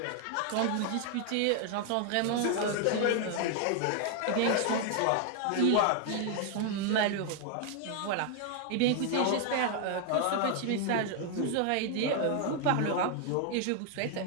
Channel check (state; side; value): different; both; correlation 0.00